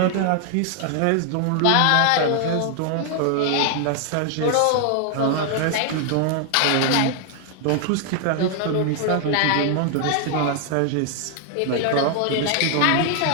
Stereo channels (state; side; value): different; both; correlation 0.00